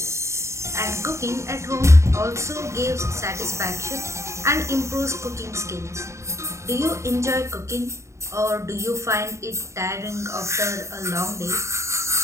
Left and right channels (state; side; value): late; left; 0.14 ms